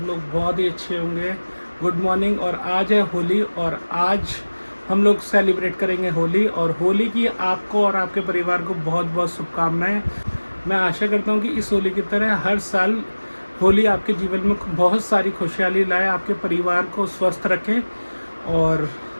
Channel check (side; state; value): both; inverted; correlation -1.00